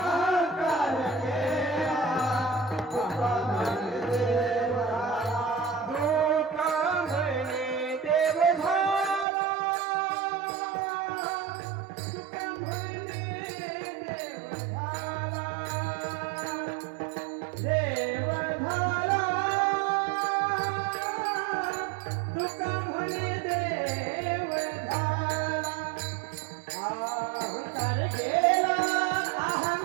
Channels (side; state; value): left; drops out; at 9.2 s